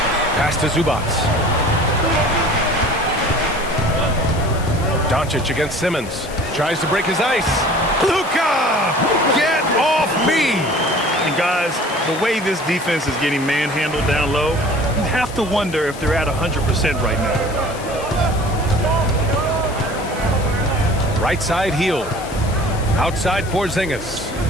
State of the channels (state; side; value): noise; left; hiss, 16 dB below the sound